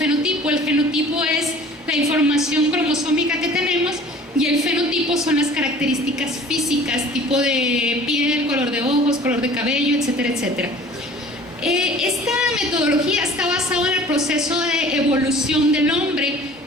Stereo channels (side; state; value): both; normal; correlation 0.47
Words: El genotipo es la información cromosómica que tenemos y el fenotipo son las características físicas, tipo de piel, color de ojos, color de cabello, etcétera, etcétera. Esta metodología está basada en el proceso de evolución del hombre.